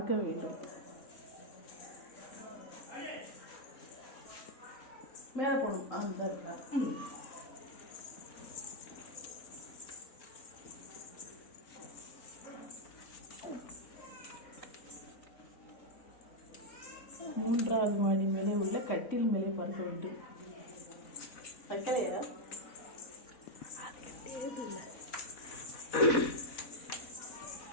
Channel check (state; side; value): late; right; 4.0 ms